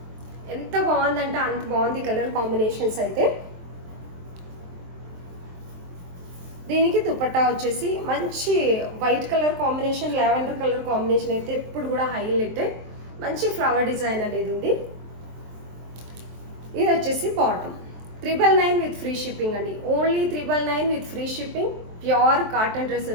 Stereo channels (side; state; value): left; late; 23 ms